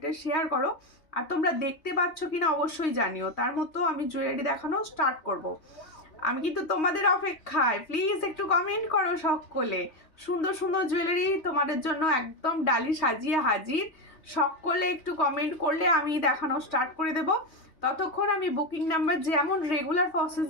শেয়ার করো। আর তোমরা দেখতে পাচ্ছ কিনা অবশ্যই জানিও। তার মতো আমি জুয়েলারি দেখানো স্টার্ট করব। আমি কিন্তু তোমাদের অপেক্ষায়, প্লিজ একটু কমেন্ট করো সকলে। সুন্দর সুন্দর জুয়েলারি তোমাদের জন্য একদম ডালি সাজিয়ে হাজির। সকলে একটু কমেন্ট করলে আমি দেখানো স্টার্ট করে দেব। ততক্ষণ আমি বুকিং নাম্বার যেমন রেগুলার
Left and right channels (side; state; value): right; late; 3.2 ms